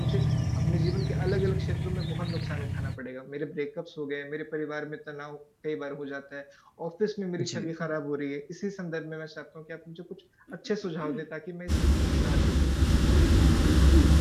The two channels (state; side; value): identical; both; correlation 1.00